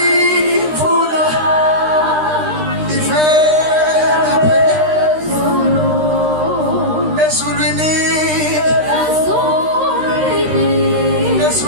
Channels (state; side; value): late; left; 13 ms